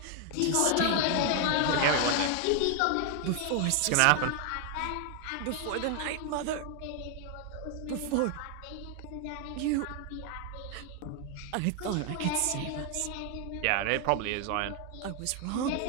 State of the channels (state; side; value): different; both; correlation 0.00